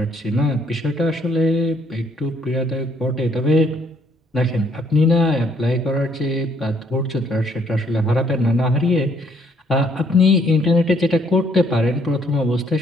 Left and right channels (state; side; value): normal; both; correlation 0.67